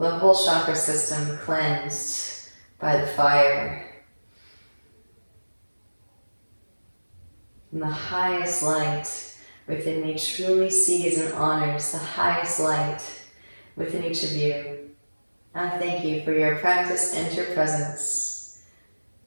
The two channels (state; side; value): inverted; both; correlation -1.00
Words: whole chakra system cleansed by the fire. And the highest light within me truly sees and honors the highest light within each of you. I thank you for your practice and your presence.